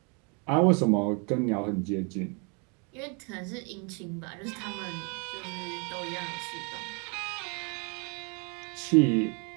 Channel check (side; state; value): left; quieter; 34.7 dB